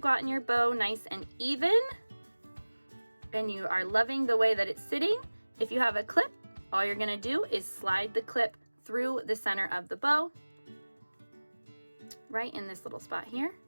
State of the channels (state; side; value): inverted; both; correlation -1.00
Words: your bow nice and even, and you are loving the way that it's sitting, if you have a clip, all you're gonna do is slide the clip through the center of the bow, right in this little spot here.